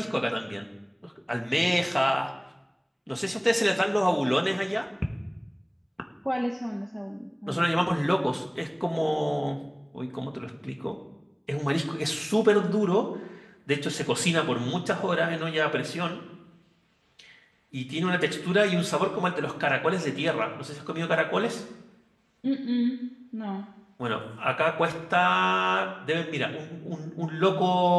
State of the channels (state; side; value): identical; both; correlation 1.00